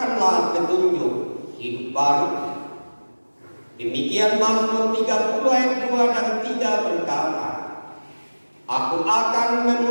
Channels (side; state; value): both; inverted; correlation -1.00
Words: petunjuk hidup baru. Demikian Mazmur 30 ayat 2 dan 3 berkata, Aku akan